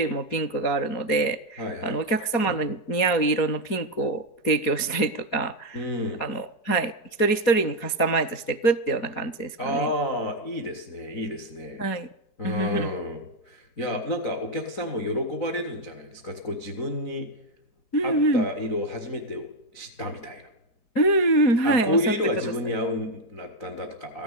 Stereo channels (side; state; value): right; late; 4.2 ms